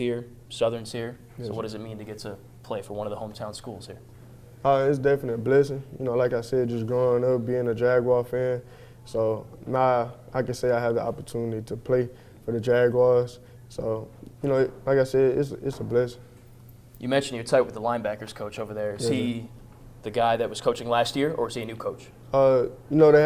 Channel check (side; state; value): both; identical; correlation 1.00